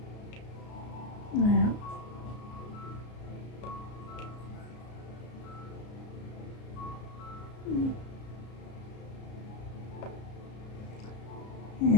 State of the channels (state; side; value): late; right; 33 ms